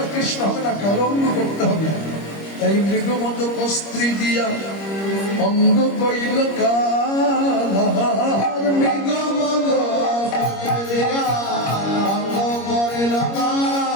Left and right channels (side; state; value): right; late; 25 ms